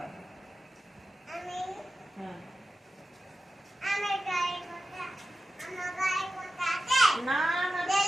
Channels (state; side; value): normal; both; correlation 0.93